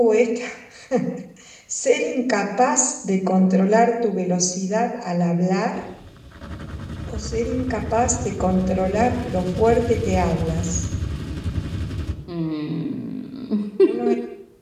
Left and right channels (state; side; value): identical; both; correlation 1.00